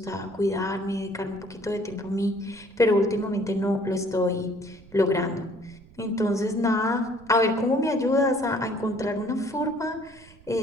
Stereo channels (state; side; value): noise; right; rumble, 24 dB below the sound